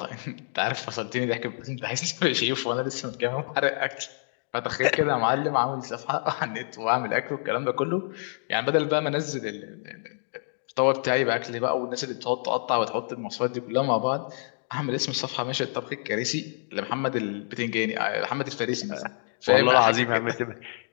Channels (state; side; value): silent; right; digital silence